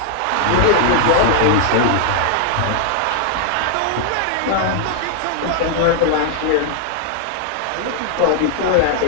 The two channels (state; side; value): different; both; correlation 0.00